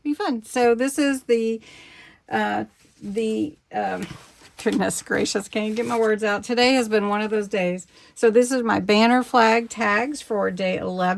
be fun. So this is the goodness gracious, can't even get my words out. Today has been one of those days. So this is my banner flag tags for day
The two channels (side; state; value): both; identical; correlation 1.00